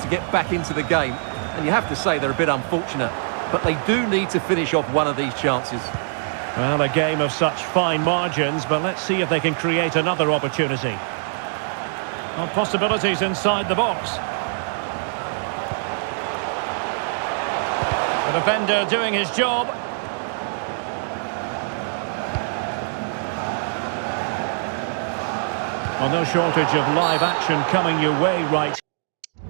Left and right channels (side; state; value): left; silent; digital silence